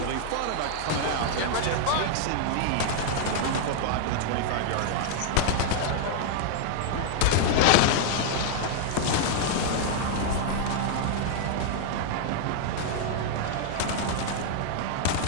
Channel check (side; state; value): both; different; correlation 0.00